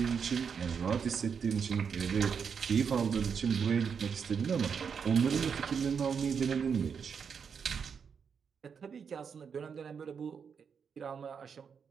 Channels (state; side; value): quieter; left; 6.6 dB